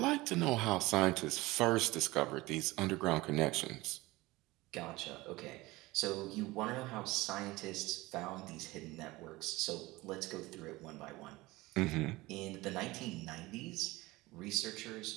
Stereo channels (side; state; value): left; quieter; 20.3 dB